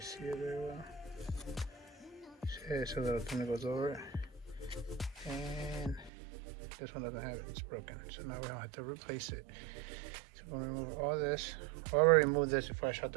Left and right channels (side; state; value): left; drops out; at 6.1 s